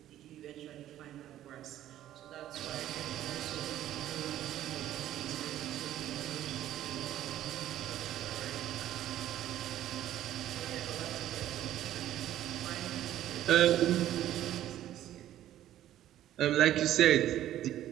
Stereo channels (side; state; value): left; quieter; 12.6 dB